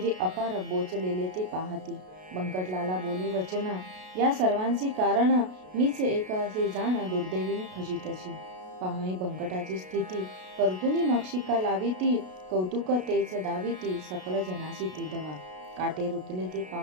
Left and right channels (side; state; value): left; late; 33 ms